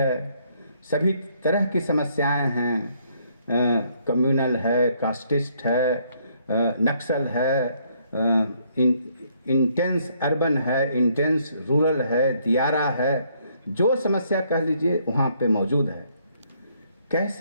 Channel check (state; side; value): inverted; both; correlation -0.69